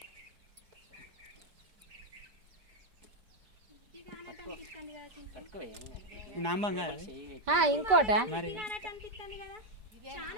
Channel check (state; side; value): late; left; 5.1 ms